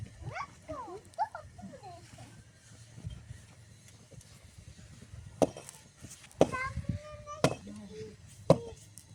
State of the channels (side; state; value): both; identical; correlation 1.00